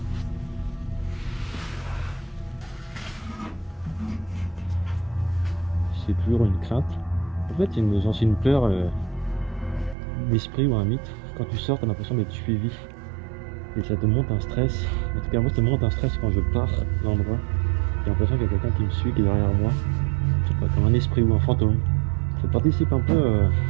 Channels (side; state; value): left; drops out; at 10.0 s